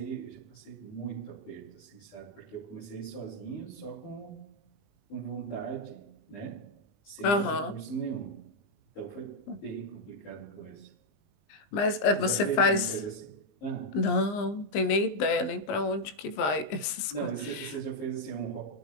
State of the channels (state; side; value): late; right; 20 ms